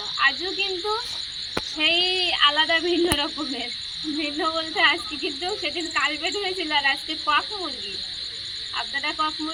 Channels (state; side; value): identical; both; correlation 1.00